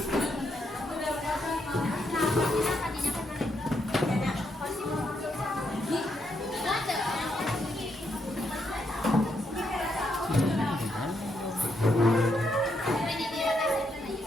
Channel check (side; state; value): both; normal; correlation 0.78